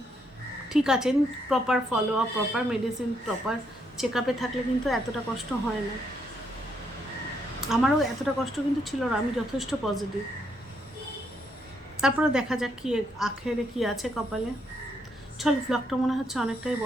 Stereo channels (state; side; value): normal; both; correlation 0.75